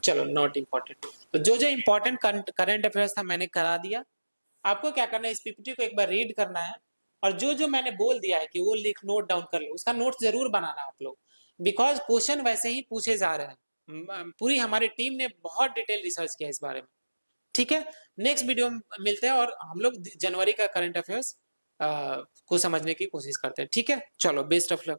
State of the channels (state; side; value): inverted; both; correlation -1.00